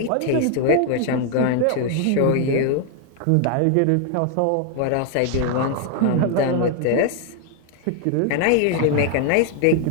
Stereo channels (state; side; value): different; both; correlation 0.00